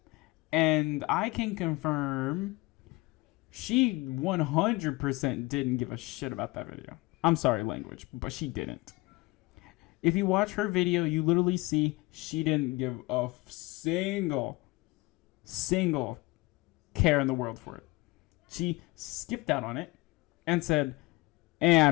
and I can confirm, she 100% didn't give a shit about that video. I'm sorry, language, but she didn't. If you watch her video, you literally see she didn't give a single care in the world for it. She skipped out on it and said, I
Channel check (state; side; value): quieter; right; 23.2 dB